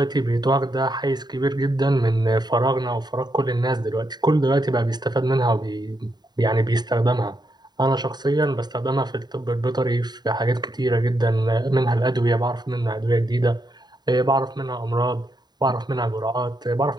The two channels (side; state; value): left; late; 0.20 ms